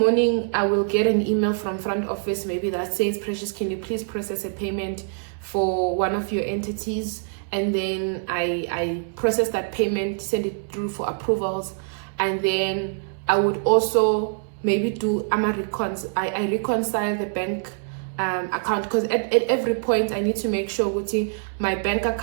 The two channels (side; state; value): left; silent; digital silence